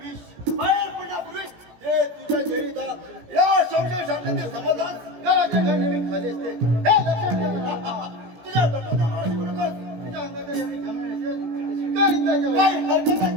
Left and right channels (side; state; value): left; late; 17 ms